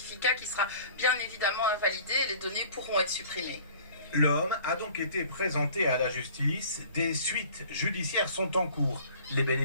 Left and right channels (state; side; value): inverted; both; correlation -0.49